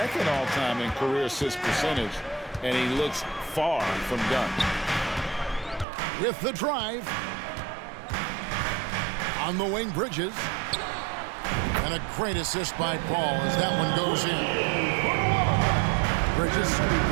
all-time in career assist percentage, and he looks far from done. With the drive. On the wing, Bridges. And a great assist by Paul as that one goes in. Bridges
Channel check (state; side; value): drops out; left; at 5.9 s